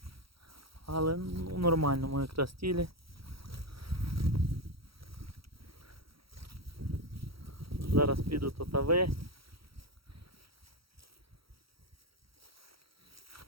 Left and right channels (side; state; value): left; late; 0.75 ms